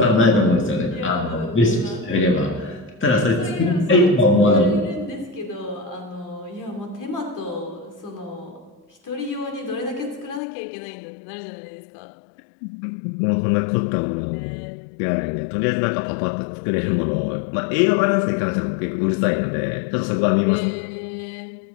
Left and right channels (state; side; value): drops out; right; at 10.4 s